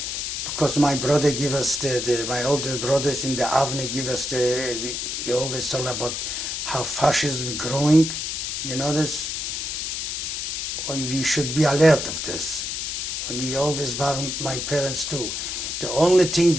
Because my brother gave us my oldest brothers in the Avni give us he always tell about how fascism is growing, you know this, and we should be alert of this. And he always warned my parents too. The only thing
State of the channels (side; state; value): left; noise; hiss, 3 dB below the sound